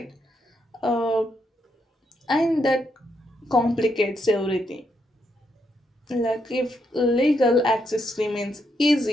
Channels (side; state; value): both; normal; correlation 0.79